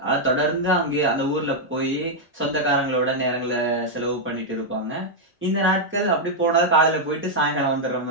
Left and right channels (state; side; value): normal; both; correlation -0.02